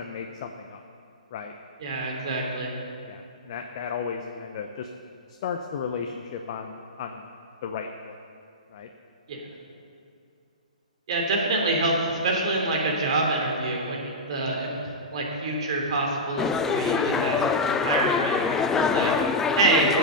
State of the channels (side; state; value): both; normal; correlation -0.07